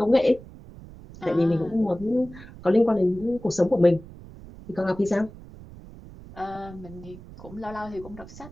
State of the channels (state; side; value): noise; right; rumble, 17 dB below the sound